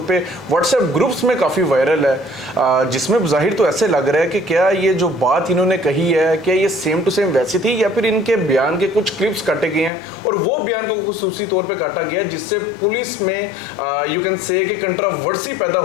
पे व्हाट्सएप ग्रुप्स में काफ़ी वायरल है, जिसमें ज़ाहिर तो ऐसे लग रहा है कि क्या ये जो बात इन्होंने कही है क्या ये सेम टू सेम वैसी थी या फिर इनके बयान के कुछ क्लिप्स काटे गए हैं और वो बयान को खुसूसी तौर पर काटा गया जिससे पुलिस में यू कैन से कि कंट्रोवर्सी पैदा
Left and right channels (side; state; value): right; drops out; at 9.9 s